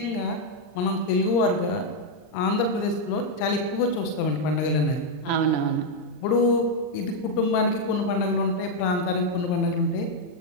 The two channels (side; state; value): right; late; 39 ms